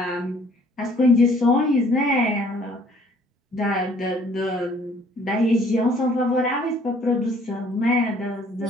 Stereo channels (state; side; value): normal; both; correlation 0.59